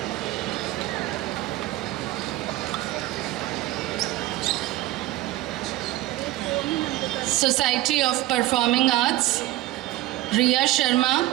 Society of Performing Arts, Riya Sharma,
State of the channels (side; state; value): left; quieter; 16.5 dB